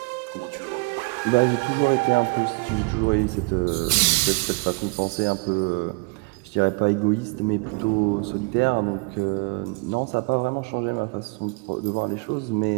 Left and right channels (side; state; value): left; quieter; 28.3 dB